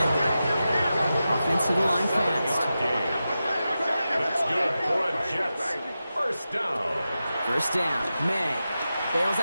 Offense to the line fast. That's good for a Jets 1st down. 1st down, May. Bails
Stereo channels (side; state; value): both; inverted; correlation -0.92